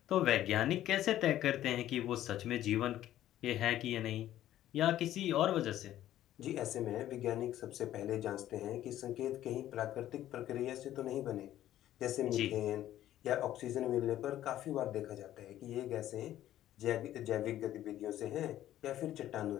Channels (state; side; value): quieter; right; 12.8 dB